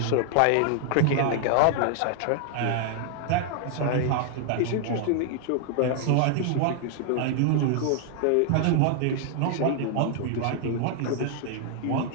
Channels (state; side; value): different; both; correlation 0.00